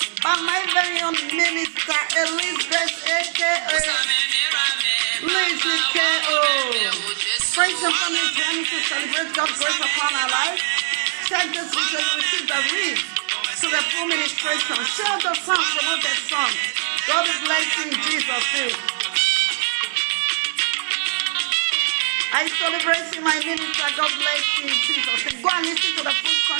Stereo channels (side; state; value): left; silent; digital silence